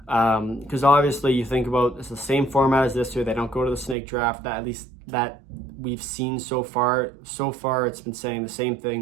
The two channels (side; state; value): left; drops out; at 4.0 s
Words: Because obviously you think about it's the same format as this year. They don't go to the snake draft. That at least that we've seen so far. So far, it's been saying the same